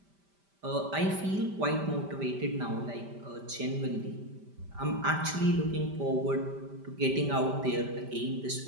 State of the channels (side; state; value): left; late; 5.1 ms